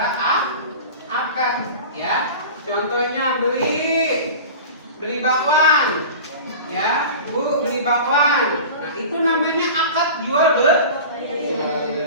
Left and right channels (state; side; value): inverted; both; correlation -0.35